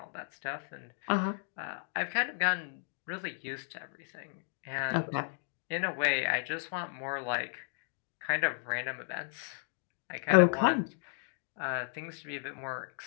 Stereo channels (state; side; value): silent; right; 55 dB below the other